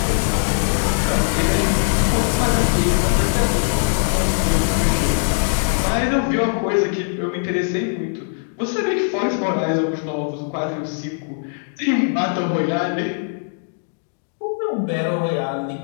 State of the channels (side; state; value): right; silent; digital silence